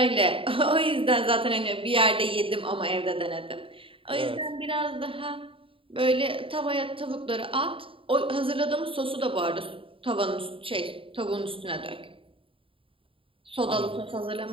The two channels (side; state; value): left; late; 0.26 ms